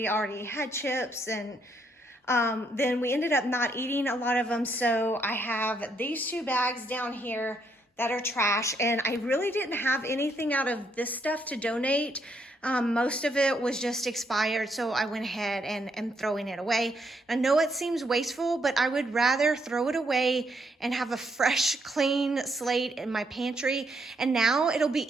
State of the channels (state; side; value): normal; both; correlation 0.74